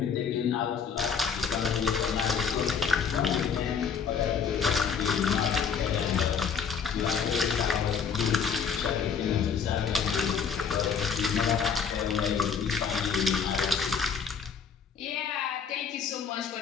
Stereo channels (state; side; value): quieter; right; 6.5 dB